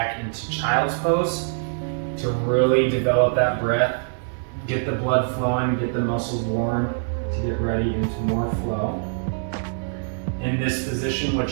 into child's pose to really develop that breath, get the blood flowing, get the muscles warm to get ready into more flow. In this position,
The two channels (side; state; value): left; silent; digital silence